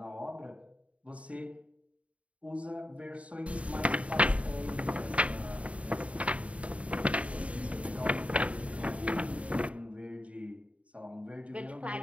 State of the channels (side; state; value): left; late; 0.065 ms